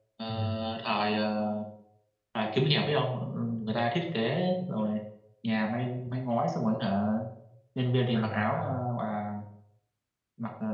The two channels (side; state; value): both; identical; correlation 1.00